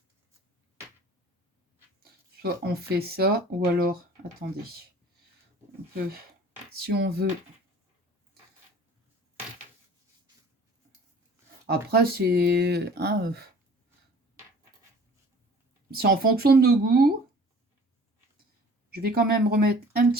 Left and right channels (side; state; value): both; normal; correlation 0.48